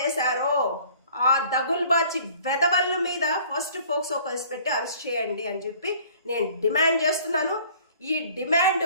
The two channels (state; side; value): inverted; both; correlation -0.52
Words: చేశారో ఆ దగుల్బాచి వెధవల మీద ఫస్ట్ ఫోక్సో కేసు పెట్టి అరెస్ట్ చేయండి అని చెప్పి నేను డిమాండ్ చేస్తున్నాను. ఈ డిమాండ్